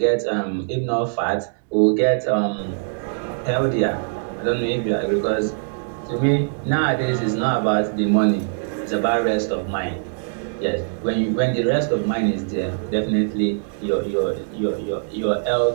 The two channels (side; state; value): left; silent; digital silence